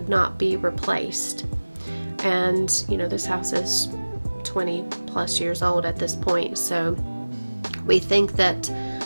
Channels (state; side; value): inverted; both; correlation -1.00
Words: not be replaced. And you know, this house is 20 plus years old at this point, so we think that